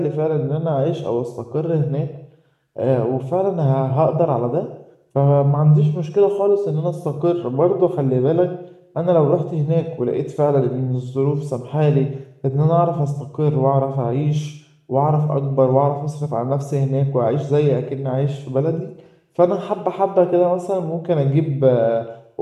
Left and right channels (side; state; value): both; identical; correlation 1.00